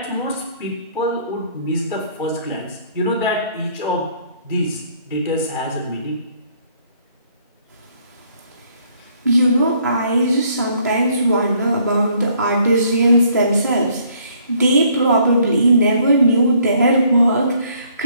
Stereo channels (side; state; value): both; inverted; correlation -0.64